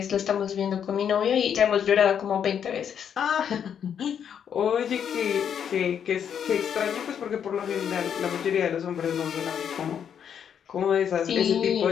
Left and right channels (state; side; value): quieter; right; 8.3 dB